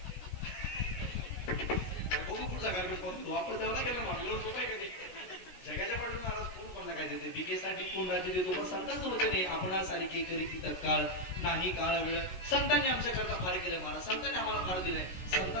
बघू पुढचा कार्यक्रम वापर द्यावा गेला मागल्यावर सोपं आहे का जगाच्या पाठून महाराज कोण कोणला काय देते बीकेसाठी कोण राज्य देतो पण संतांचं होते नाही. आपण सारी के करी ती तत्काळ नाही काळ वेळ. संतांनी आमच्या करता फार केलं महाराज. संतांनी आम्हाला फार दिलंय.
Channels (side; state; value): right; late; 16 ms